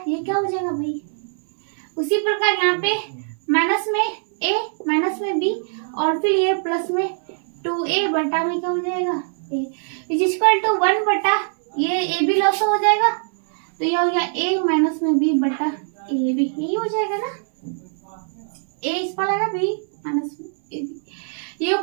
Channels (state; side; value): silent; left; 64 dB below the other